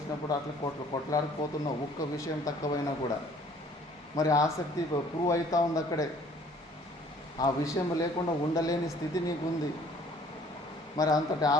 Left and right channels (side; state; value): both; normal; correlation 0.56